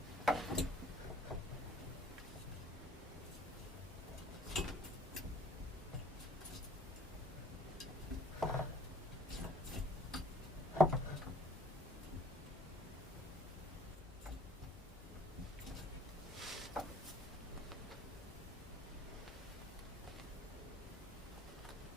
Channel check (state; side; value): normal; both; correlation 0.54